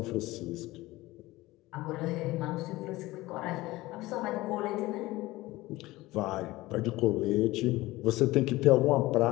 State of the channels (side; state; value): right; quieter; 18.9 dB